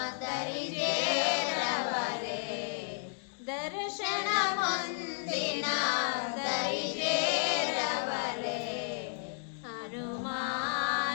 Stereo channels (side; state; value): right; silent; digital silence